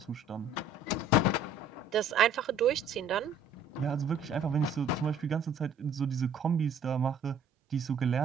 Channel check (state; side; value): quieter; left; 3.3 dB